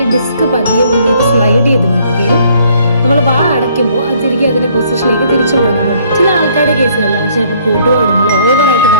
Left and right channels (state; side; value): inverted; both; correlation -0.63